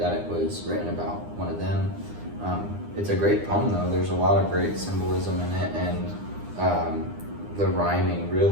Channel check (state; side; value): late; left; 9.8 ms